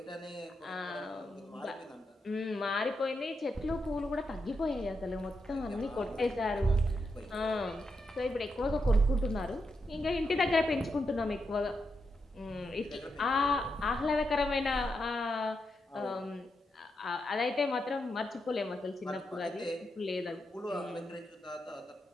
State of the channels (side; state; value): both; normal; correlation 0.84